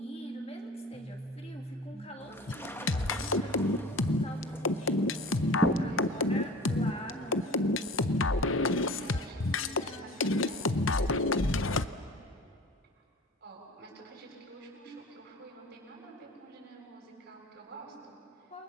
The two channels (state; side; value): normal; both; correlation 0.40